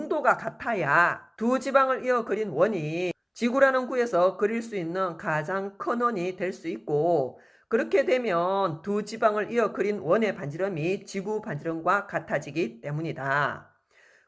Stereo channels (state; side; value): identical; both; correlation 1.00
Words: 같아야 두 지방을 이어 그린 원이 지구라는 구에서 그릴 수 있는 가장 큰 원이 될 수 있고 그렇게 되면 두 지방을 이어 그린 원의 반지름이 지구 반지름과 같아지기 때문이다.